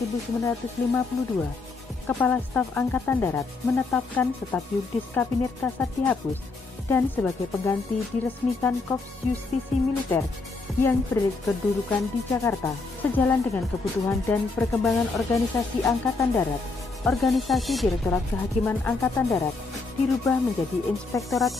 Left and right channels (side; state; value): right; quieter; 3.8 dB